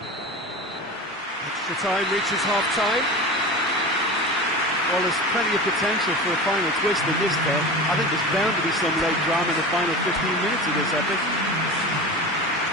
time, reaches half-time. Well, there's plenty of potential for a final twist in this game. I think there's bound to be some late drama in the final 15 minutes of this epic.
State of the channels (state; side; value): normal; both; correlation 0.30